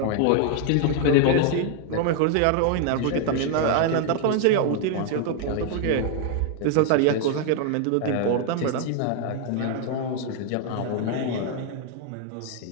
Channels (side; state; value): both; different; correlation 0.00